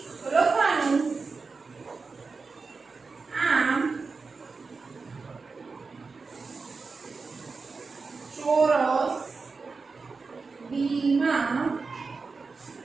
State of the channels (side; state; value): left; quieter; 4.4 dB